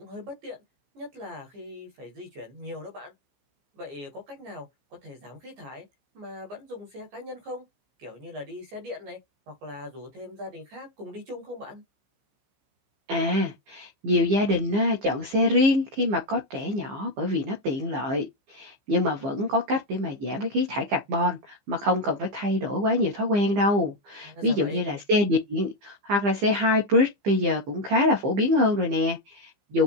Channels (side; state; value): left; late; 15 ms